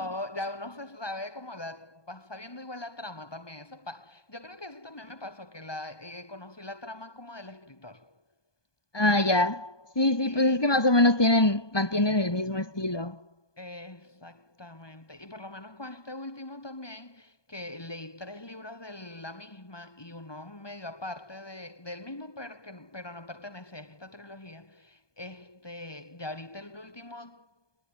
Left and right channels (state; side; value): late; right; 1.2 ms